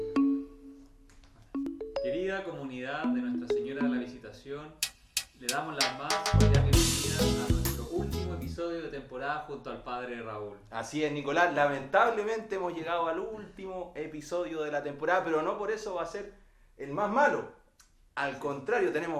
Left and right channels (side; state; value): both; identical; correlation 1.00